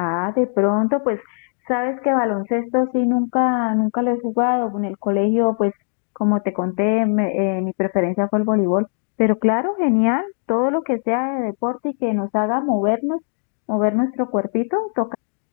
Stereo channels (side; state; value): right; silent; 64 dB below the other